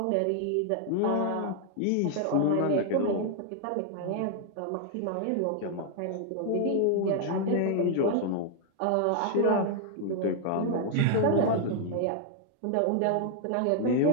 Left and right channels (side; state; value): both; different; correlation 0.00